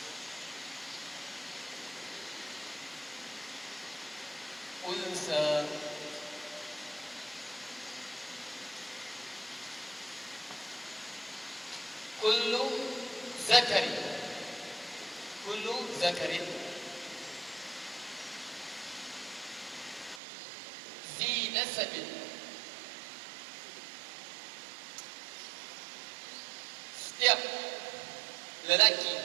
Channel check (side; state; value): left; drops out; at 20.2 s